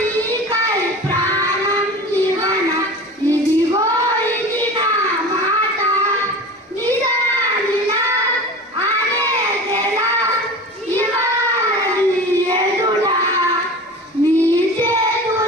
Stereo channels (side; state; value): both; normal; correlation 0.34